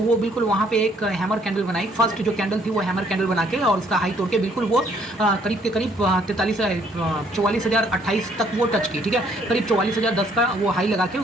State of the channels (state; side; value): normal; both; correlation 0.65